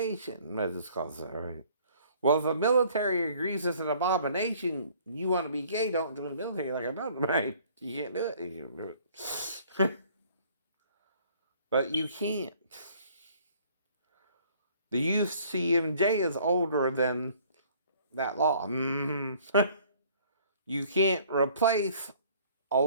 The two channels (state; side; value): inverted; both; correlation -0.57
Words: as it's called, right? Well, if the military agrees it's an abomination, you want to be gay, don't join the military like I'm not, right? You can't do it. You can't do it. But you can't. The UCMJ is older than that law. You can't replace a